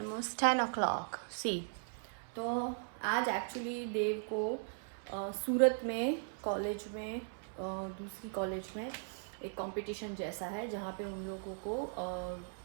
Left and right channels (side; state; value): left; silent; 52 dB below the other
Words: 10 o'clock। सी तो आज एक्चुअली देव को सूरत में कॉलेज में दूसरी कॉलेज में एक कंपटीशन जैसा है जहाँ पे उन लोगों को